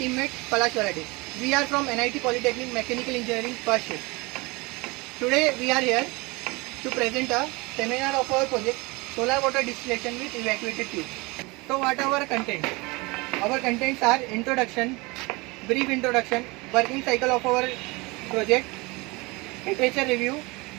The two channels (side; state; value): left; quieter; 25.1 dB